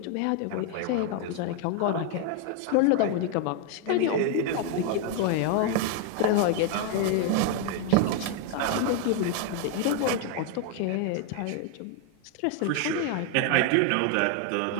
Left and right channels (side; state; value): both; different; correlation 0.01